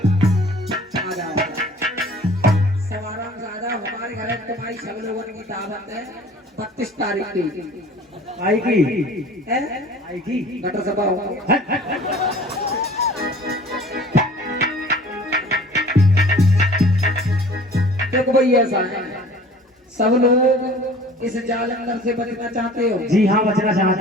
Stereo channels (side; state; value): both; normal; correlation 0.47